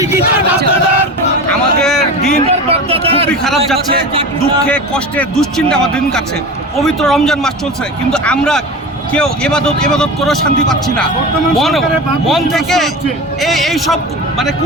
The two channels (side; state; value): both; normal; correlation 0.30